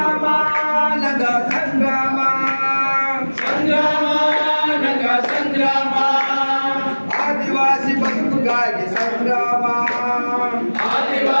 ನಗ ಸಂಗ್ರಾಮ ಸಂಗ್ರಾಮ ನಗ ಸಂಗ್ರಾಮ ಆದಿವಾಸಿ ಬದುಕಿಗಾಗಿ ಸಂಗ್ರಾಮ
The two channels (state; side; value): inverted; both; correlation -1.00